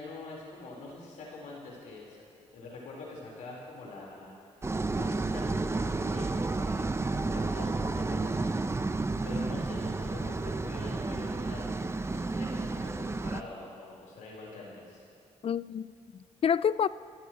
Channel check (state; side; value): normal; both; correlation 0.75